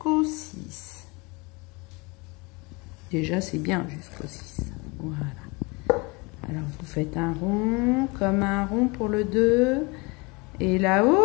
6. Déjà, c'est bien jusqu'au 6. Voilà. Alors, vous faites un rond, comme un rond pour le 2. Et là, hop,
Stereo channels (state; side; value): quieter; right; 27.3 dB